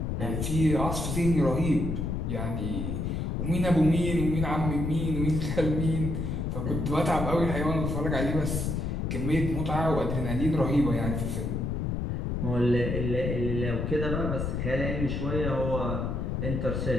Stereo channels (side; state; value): left; noise; rumble, 1 dB below the sound